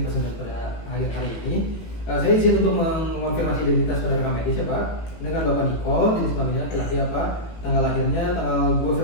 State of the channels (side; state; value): right; late; 18 ms